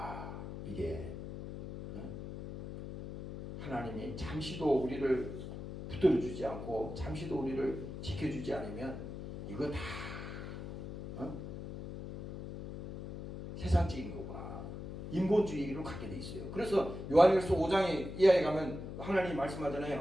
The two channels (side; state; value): left; noise; hum, 8 dB below the sound